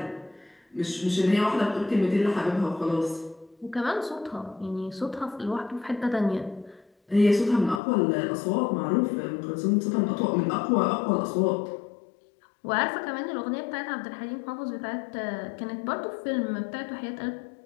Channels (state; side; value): drops out; right; at 7.8 s